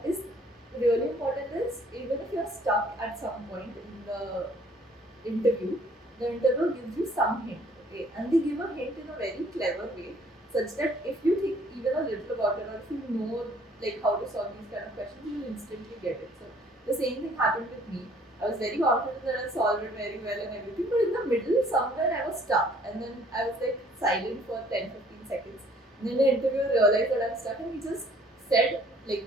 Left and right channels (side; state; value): both; normal; correlation 0.59